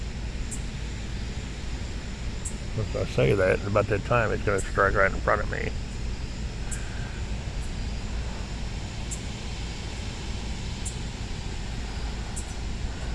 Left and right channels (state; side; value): identical; both; correlation 1.00